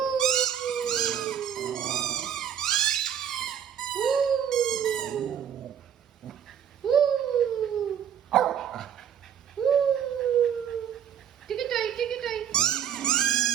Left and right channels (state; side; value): quieter; left; 8.8 dB